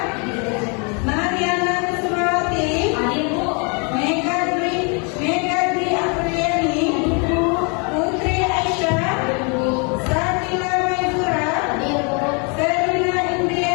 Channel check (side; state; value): right; quieter; 34.8 dB